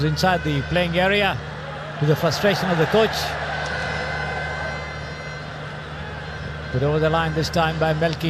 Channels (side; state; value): both; identical; correlation 1.00